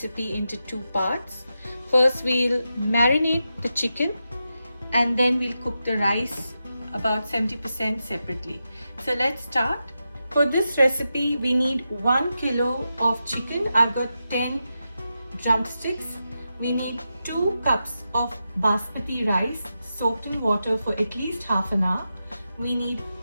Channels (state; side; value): inverted; both; correlation -0.89